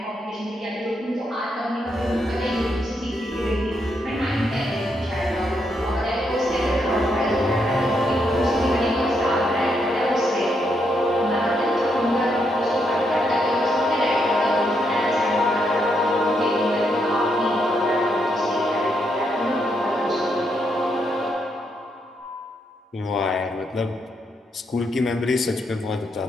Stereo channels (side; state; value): both; normal; correlation 0.78